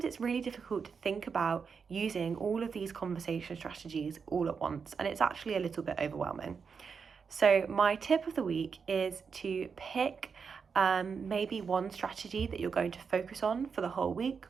it's really difficult to think about using all of these conversation strategies all at once, and it's actually a little bit overwhelming. So my tip of the week is to pick maybe one strategy that you're going to focus on for the whole week,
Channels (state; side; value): quieter; left; 5.9 dB